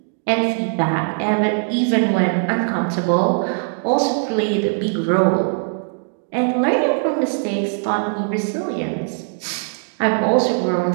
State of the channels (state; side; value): silent; left; 59 dB below the other